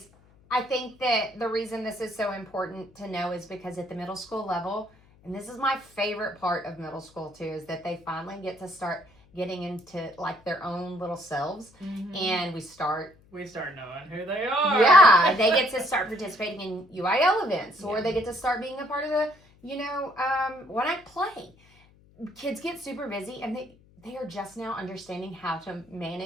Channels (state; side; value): noise; left; hum, 28 dB below the sound